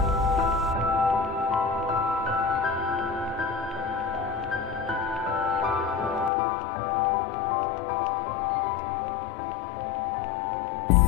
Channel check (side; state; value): right; drops out; at 6.3 s